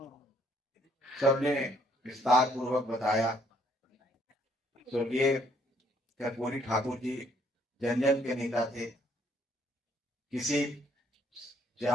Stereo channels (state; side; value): normal; both; correlation 0.66